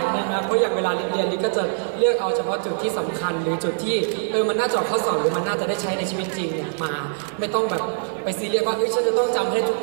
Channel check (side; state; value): left; silent; digital silence